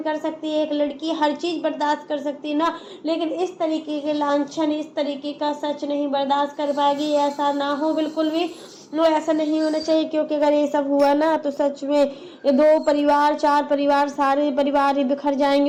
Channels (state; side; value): identical; both; correlation 1.00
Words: कर सकती है, एक लड़की हर चीज बर्दाश्त कर सकती है ना, लेकिन इस तरीके के लांछन, इस तरीके का सच नहीं बर्दाश्त कर पाएगी। ऐसा ना हो बिल्कुल भी, नो ऐसा नहीं होना चाहिए, क्योंकि अगर ये सब हुआ ना तो सच में ये 2 परिवार 4 परिवार सारे परिवार ही बिखर